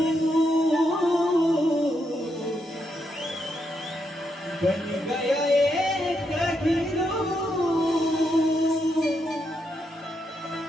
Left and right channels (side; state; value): both; normal; correlation 0.80